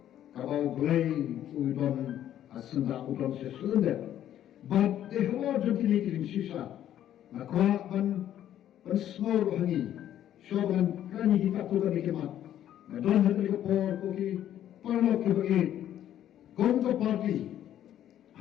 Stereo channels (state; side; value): quieter; right; 11.3 dB